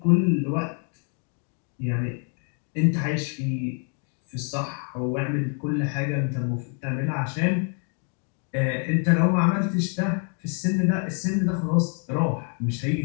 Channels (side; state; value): right; quieter; 39.6 dB